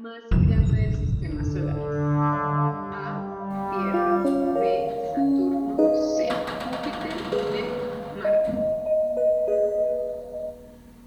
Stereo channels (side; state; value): both; identical; correlation 1.00